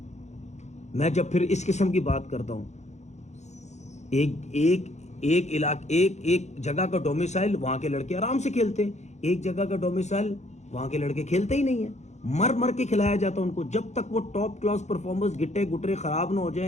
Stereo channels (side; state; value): right; late; 0.33 ms